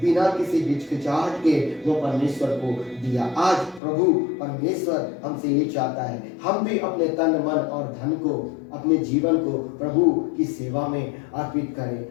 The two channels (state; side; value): drops out; right; at 3.8 s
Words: बिना किसी हिचकिचाहट के वो परमेश्वर को दिया। आज प्रभु परमेश्वर हमसे ये चाहता है, हम भी अपने तन मन और धन को, अपने जीवन को प्रभु की सेवा में अर्पित